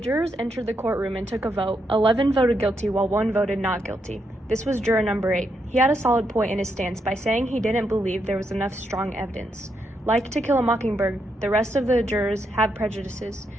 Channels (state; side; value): normal; both; correlation 0.80